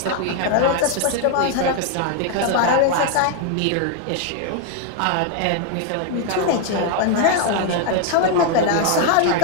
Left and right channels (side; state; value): both; different; correlation 0.00